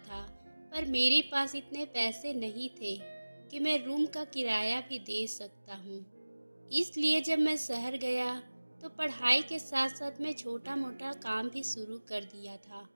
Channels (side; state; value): both; inverted; correlation -1.00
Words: पर मेरे पास इतने पैसे नहीं थे कि मैं रूम का किराया भी दे सकता हूँ। इसलिए जब मैं शहर गया तो पढ़ाई के साथ साथ मैं छोटा मोटा काम भी शुरू कर दिया था।